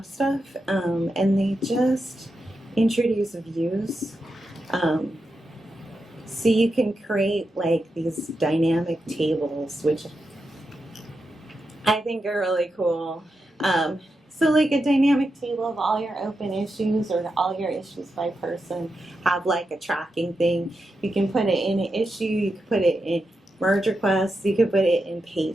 stuff. And they just introduce views. So you can create like these dynamic tables, which I think are really cool. So like a dynamic table of all your open issues or all your issues by person, have like a tracking thing. You can put it in an issue, you can put it in merge requests, you can put it in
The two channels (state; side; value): normal; both; correlation 0.87